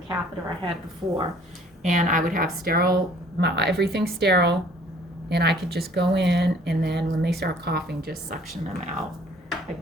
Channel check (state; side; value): normal; both; correlation 0.55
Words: I had before, and I would have sterile, everything sterile, and I could just go in, and then when they start coughing, just suction them out